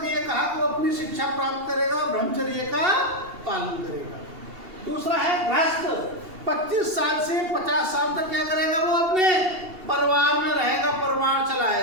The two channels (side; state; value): left; late; 2.8 ms